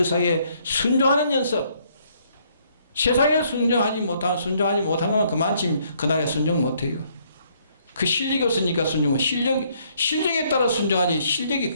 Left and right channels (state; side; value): inverted; both; correlation -0.68